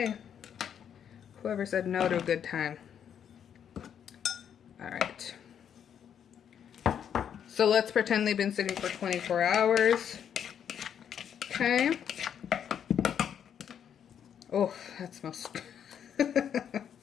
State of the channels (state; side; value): quieter; right; 8.6 dB